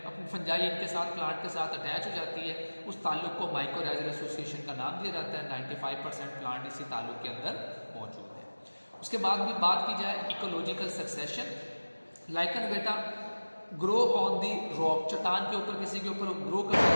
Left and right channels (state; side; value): inverted; both; correlation -1.00